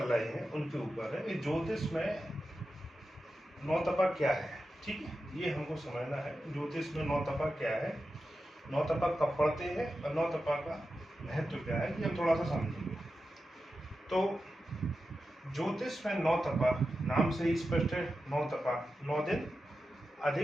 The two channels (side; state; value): both; normal; correlation 0.91